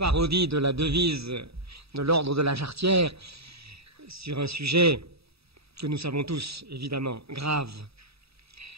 de la devise de l'ordre de la Jarretière sur un sujet que nous savons tous, évidemment, grave.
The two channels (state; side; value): late; left; 0.77 ms